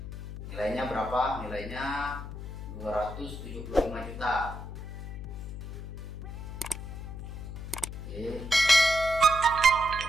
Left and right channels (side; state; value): left; noise; hum, 8 dB below the sound